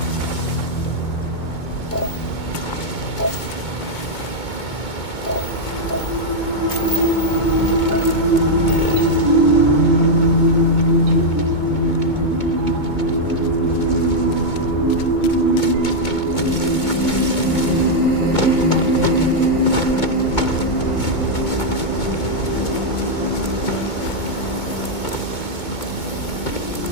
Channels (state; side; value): late; right; 2.2 ms